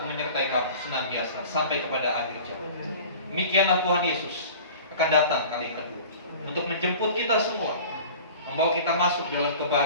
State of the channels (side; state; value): both; inverted; correlation -0.41